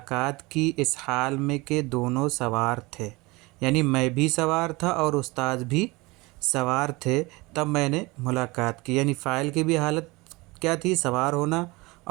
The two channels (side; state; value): left; quieter; 23.5 dB